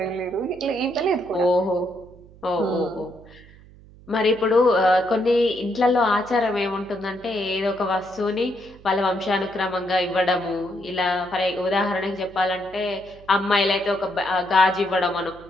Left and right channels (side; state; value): right; noise; hum, 23 dB below the sound